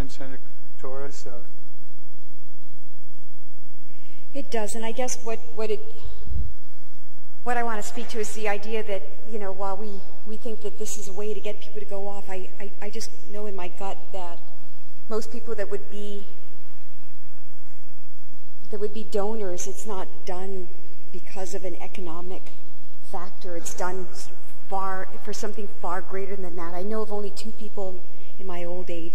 Senator Torres. It does, and I guess what I want to speak to is the idea that, while we think that this is a way to get people to go off, I just know in my gut that most people that would be donors, it's not done because of an economic factor. It's done for something far greater than that. I know of only 2 people in my old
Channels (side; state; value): both; identical; correlation 1.00